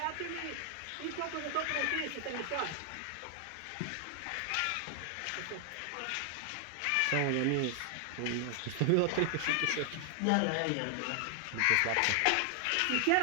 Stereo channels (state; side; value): different; both; correlation 0.00